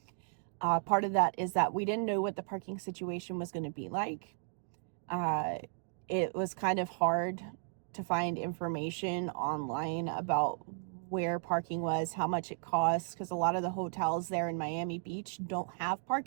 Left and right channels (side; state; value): left; silent; digital silence